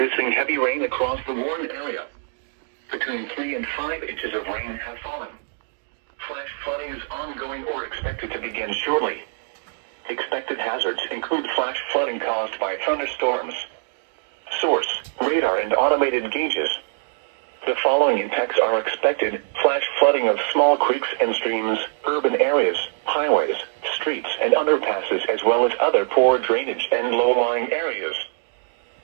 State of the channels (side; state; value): left; silent; digital silence